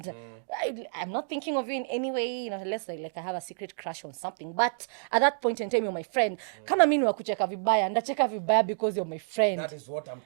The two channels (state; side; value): silent; left; digital silence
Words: I'm not thinking of you in any way, unless like I have a secret crush on something. But at that point in time, you're my friend. Kama mimi wakucheka vibaya, ndacheka vibaya because you're my friend. That is what I'm